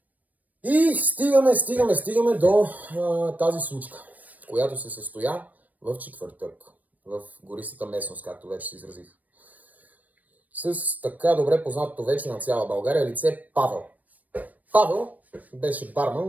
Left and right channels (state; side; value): late; left; 0.077 ms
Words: И стигаме до тази случка, която се състоя в четвъртък, в гористата местност, както вече се изразих. С така добре познатото вече на цяла България лице Павел. Павел беше барман